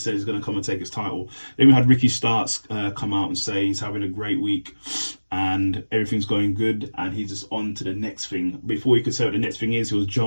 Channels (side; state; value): both; inverted; correlation -1.00